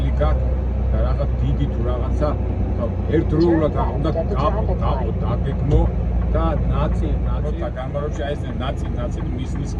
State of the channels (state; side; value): identical; both; correlation 1.00